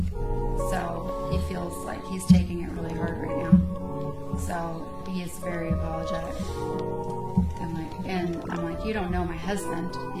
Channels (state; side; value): identical; both; correlation 1.00